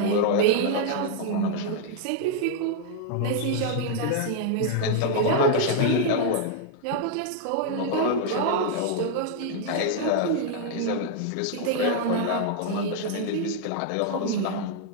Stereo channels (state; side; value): different; both; correlation -0.01